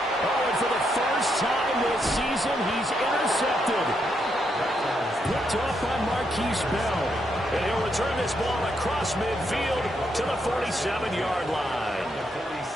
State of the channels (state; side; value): normal; both; correlation 0.79